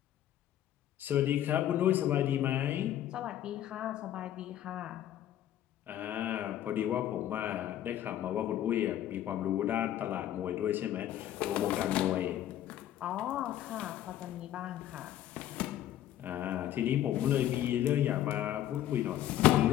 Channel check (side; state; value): right; quieter; 12.1 dB